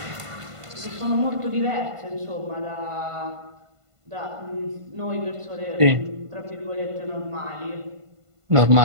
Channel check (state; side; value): late; left; 1.5 ms